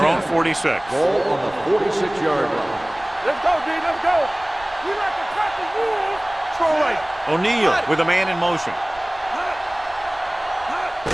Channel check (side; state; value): right; noise; rumble, 23 dB below the sound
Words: own 46. Ball on the 46-yard line. Let's go, D. Let's go. We like to crack the rules. Throw right. O'Neal with a man in motion.